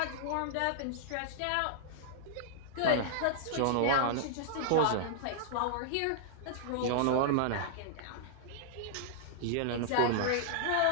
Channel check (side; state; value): both; different; correlation -0.01